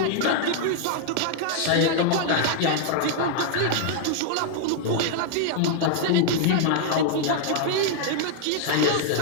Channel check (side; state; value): both; different; correlation 0.00